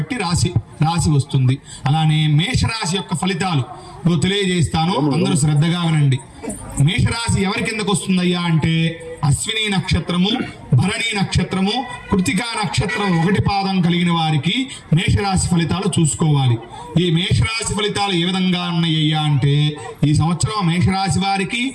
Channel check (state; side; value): identical; both; correlation 1.00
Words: రాశి వస్తుంది. అలానే మేషరాశి యొక్క ఫలితాలు తెలియజేస్తాను, అందరూ శ్రద్ధగా వినండి. మేషరాశి ఎవరి కిందకు వస్తుందయ్యా అంటే అశ్విని నక్షత్రము, భరణి నక్షత్రము, కృతికా నక్షత్రం 1 పాదం కలిగిన వారికి మేషరాశి ఫలితాలు చూసుకోవాలి. ఈ మేషరాశి ఫలితాలు ఏ విధంగా ఉన్నాయ్యా అంటే ఈ సంవత్సరం మేషరాశి వారికి